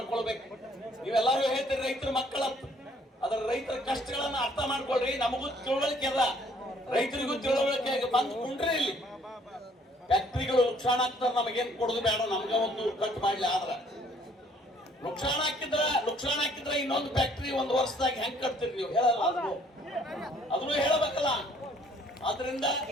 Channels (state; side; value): normal; both; correlation 0.61